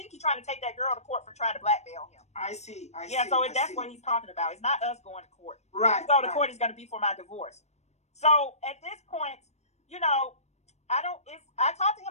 he's trying to take that girl to court for trying to blackmail him. I see. That's what he's talking about. It's not us going to court. Right. If we go to court, it's going to be for my divorce. So at this point, I talked to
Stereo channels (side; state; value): right; late; 0.32 ms